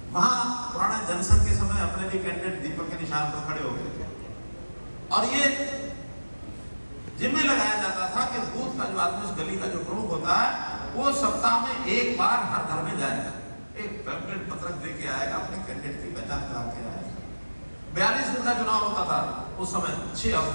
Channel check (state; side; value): inverted; both; correlation -1.00